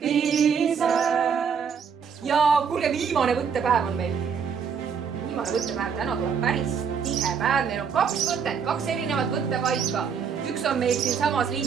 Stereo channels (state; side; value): quieter; left; 6.7 dB